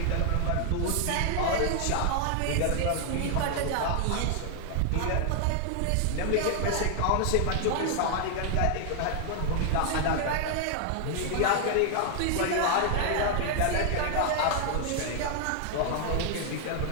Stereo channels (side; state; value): both; different; correlation 0.00